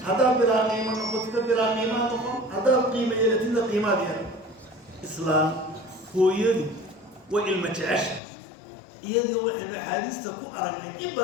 haddaad bilaa qiimo noqotida bilaa qiimaa noqon, haddaad qiimo yeelatidna qiimaad yeelan. islaam hooyadu way ilma jecesha. iyadoo waxaynu axaadiista ku aragnay in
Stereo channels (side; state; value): right; drops out; at 8.2 s